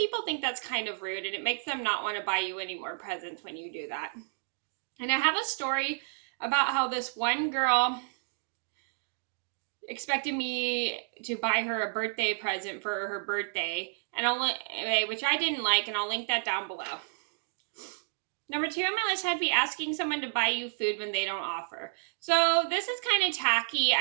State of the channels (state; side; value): silent; left; digital silence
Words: think that's kind of rude and it makes them not want to buy you any more presents when you do that. And I have a story about how this one girl expected me to buy her a birthday present for her birthday, which I didn't like, and I'll link that down below. Number two on my list had to be asking someone to buy you food when they don't offer. So this is kind of tacky.